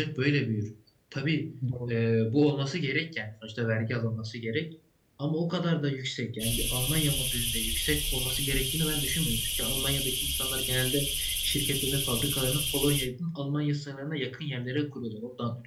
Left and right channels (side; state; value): both; identical; correlation 1.00